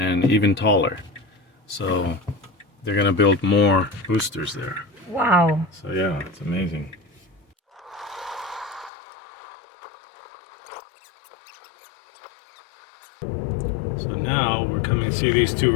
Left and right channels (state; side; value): drops out; right; at 8.9 s